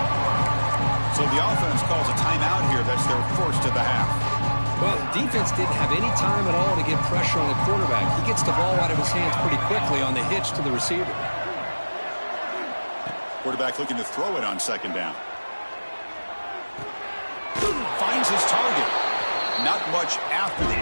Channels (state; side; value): inverted; both; correlation -1.00